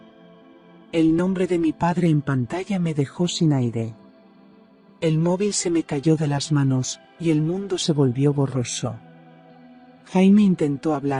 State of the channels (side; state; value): both; identical; correlation 1.00